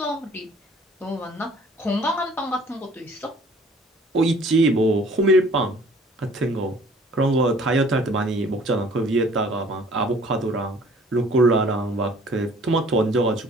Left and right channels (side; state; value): both; normal; correlation 0.53